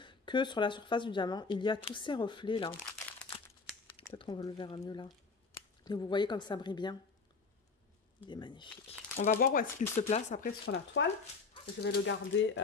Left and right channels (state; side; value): quieter; right; 4.6 dB